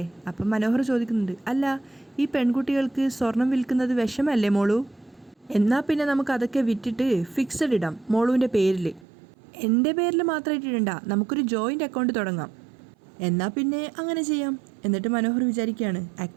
അപ്പം മനോഹർ ചോദിക്കുന്നുണ്ട്, അല്ല ഈ പെൺകുട്ടികൾക്ക് സ്വർണം വിൽക്കുന്നത് വിഷമല്ലേ മോളു? എന്നാൽ പിന്നെ നമുക്ക് അതൊക്കെ വിറ്റിട്ട് ഫിക്സഡ് ഇടാം മോളുവിൻ്റെ പേരിൽ, എൻ്റെ പേരിൽ മാത്രമായിട്ട് ഇടണ്ട, നമുക്കൊരു ജോയിൻ്റ് അക്കൗണ്ട് തുടങ്ങാം. എന്നാൽ പിന്നെ അങ്ങനെ ചെയ്യാം. എന്നിട്ട് മനോഹർ വിചാരിക്കുകയാണ്,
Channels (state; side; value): drops out; left; at 9.1 s